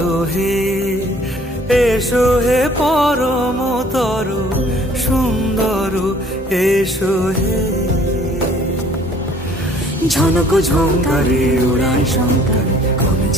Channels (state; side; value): normal; both; correlation 0.56